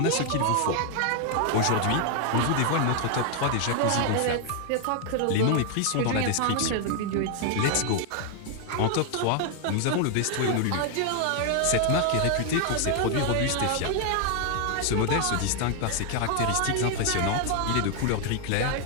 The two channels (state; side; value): different; both; correlation 0.00